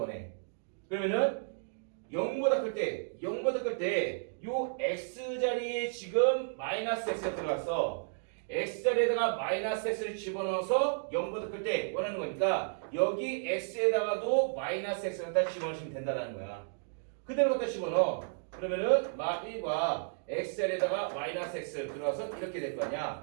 그러면은 0보다 클 때 요 x 자리에 지금 마이너스 x가 들어갔어. x 자리에다가 마이너스 x를 집어넣어서 0보다 클 때 원하는 거니까 여기 x에다가도 마이너스 x를 갖다 집어넣으시면 된다는 거야. 그대로 갖다 집어넣어. 그러면은 마 1과 x 자리에다가 마이너스 x 들어와서 이렇게 될 거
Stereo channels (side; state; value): left; silent; digital silence